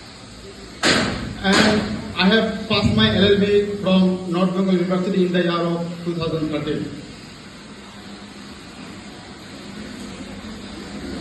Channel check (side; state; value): both; identical; correlation 1.00